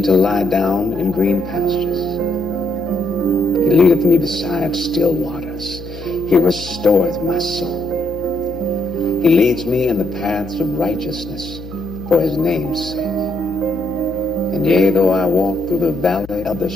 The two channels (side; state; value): left; noise; hum, 15 dB below the sound